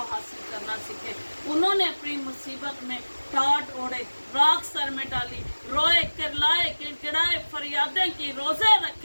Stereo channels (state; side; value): inverted; both; correlation -1.00